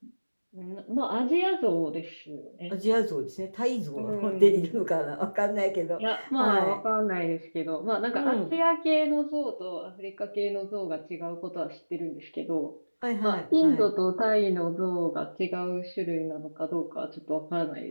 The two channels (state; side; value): inverted; both; correlation -1.00